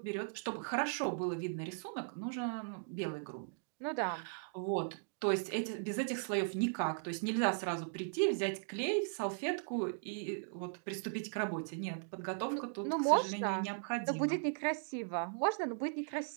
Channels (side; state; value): left; silent; digital silence